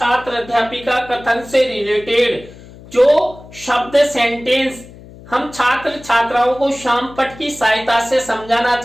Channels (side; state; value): left; noise; hum, 19 dB below the sound